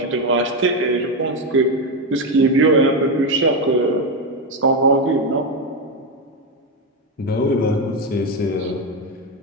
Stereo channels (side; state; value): both; normal; correlation 0.09